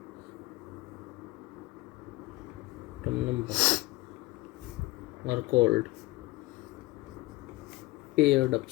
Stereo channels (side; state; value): right; quieter; 20.0 dB